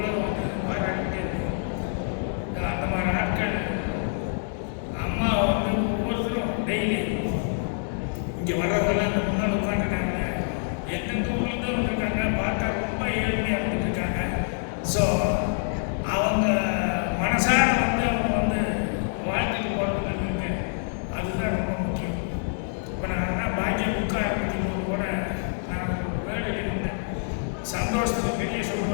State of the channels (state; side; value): silent; right; digital silence